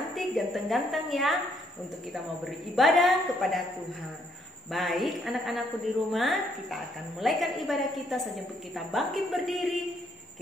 ganteng-ganteng ya, untuk kita mau beribadah kepada Tuhan. Baik anak-anakku di rumah, kita akan mulaikan ibadah kita sampai kita bangkit berdiri.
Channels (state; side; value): normal; both; correlation 0.70